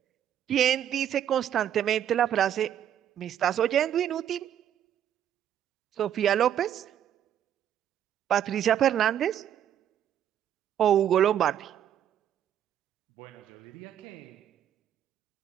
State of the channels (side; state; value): left; quieter; 10.2 dB